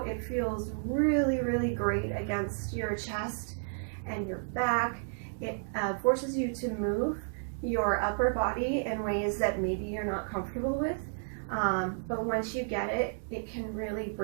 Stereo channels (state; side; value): silent; left; digital silence